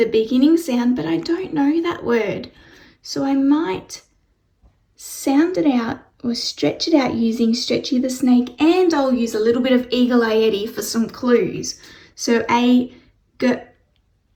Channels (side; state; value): both; identical; correlation 1.00